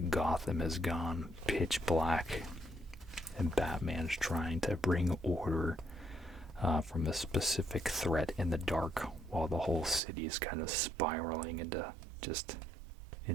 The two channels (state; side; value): drops out; left; at 10.0 s